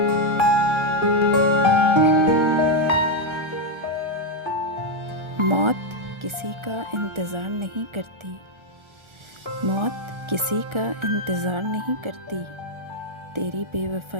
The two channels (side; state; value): left; late; 1.3 ms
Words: मौत किसी का इंतज़ार नहीं करती, मौत किसी का इंतज़ार नहीं करती, तेरी